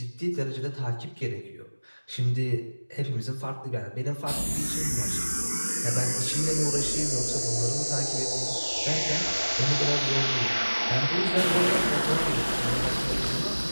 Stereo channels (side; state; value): both; inverted; correlation -1.00